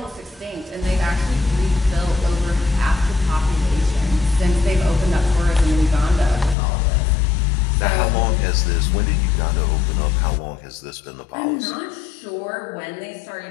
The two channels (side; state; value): right; drops out; at 6.6 s